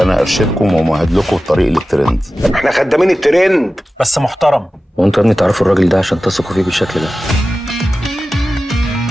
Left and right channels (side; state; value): both; normal; correlation 0.95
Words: ارشدكم ومهد لكم الطريق للترند. احنا خدامين الترند بس محترم. وانتوا يا ابني تعرفوا الراجل ده عشان تثقوا فيه بالشكل ده؟